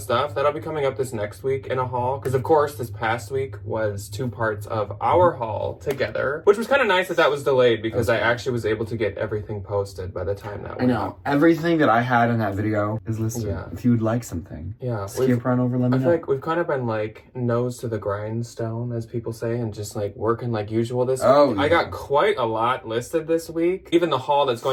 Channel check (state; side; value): identical; both; correlation 1.00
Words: stuff. That'll be coming up this next week in a haul. Because of course, this past week was 2 parts of our haul together. Which was kind of nice that was delayed because I actually was able to get everything posted by the time that went out. Everything that I had in that video is listed. Yeah. If you would like something. Yeah. Skip right over, let me know. I feel like we've kind of been nose to the grindstone, as people say, and just working like usual this week. Yeah. I got quite a lot listed this week. Even the haul that's